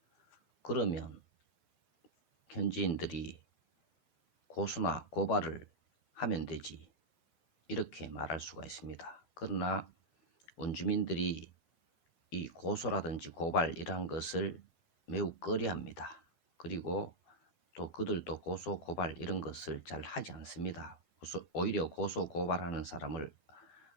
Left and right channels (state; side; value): late; right; 12 ms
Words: 그러면 현지인들이 고소나 고발을 하면 되지 이렇게 말할 수가 있습니다. 그러나 원주민들이 이 고소라든지 고발 이러한 것을 매우 꺼려합니다. 그리고 또 그들도 고소 고발 이런 것을 잘 하지 않습니다. 오히려 고소 고발하는 사람을